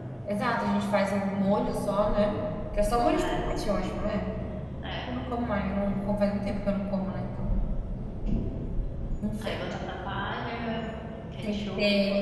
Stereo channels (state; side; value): identical; both; correlation 1.00